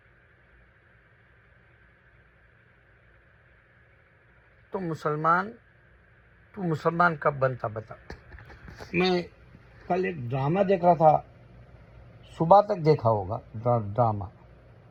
तो तू मुसलमान कब बनता बता। मैं कल एक ड्रामा देख रहा था, सुबह तक देखा होगा ड्रामा,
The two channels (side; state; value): both; identical; correlation 1.00